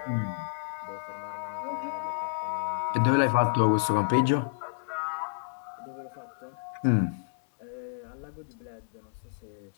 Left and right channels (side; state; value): right; silent; digital silence